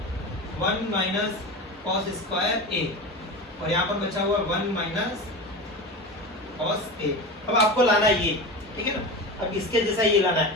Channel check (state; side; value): normal; both; correlation 0.27